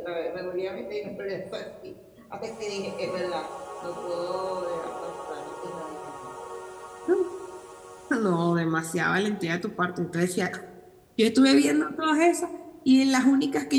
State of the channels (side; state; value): both; identical; correlation 1.00